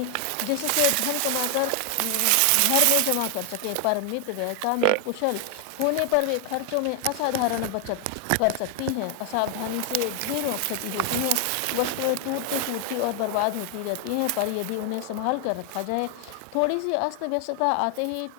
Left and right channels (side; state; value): both; different; correlation 0.00